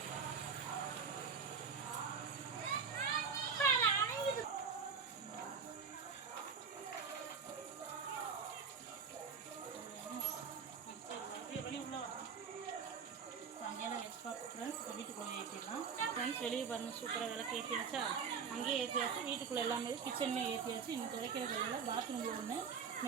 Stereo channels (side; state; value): left; quieter; 6.1 dB